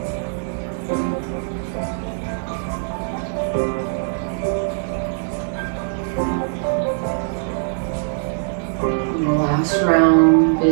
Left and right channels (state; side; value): silent; left; digital silence